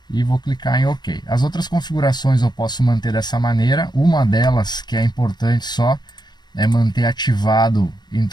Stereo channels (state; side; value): late; right; 0.21 ms